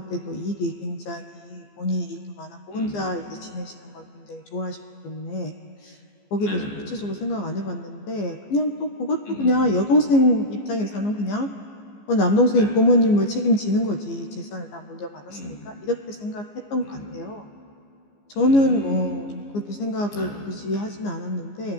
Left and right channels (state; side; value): late; right; 15 ms